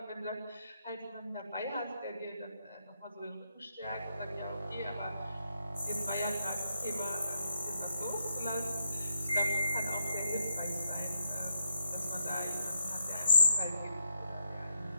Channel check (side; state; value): both; inverted; correlation -0.78